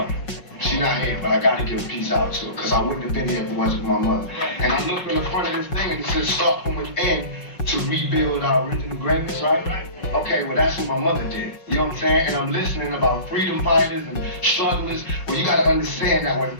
She's not here, but I gotta give peace out to her, because I wouldn't have been here if it wasn't for my mother. And I look in the front of this thing and it says start from within to rebuild our original greatness, right? Okay, well that's what my mother did. You know what I'm saying? And I'm listening about freedom fighters and strugglers. Well, you gotta understand that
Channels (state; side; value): late; right; 5.5 ms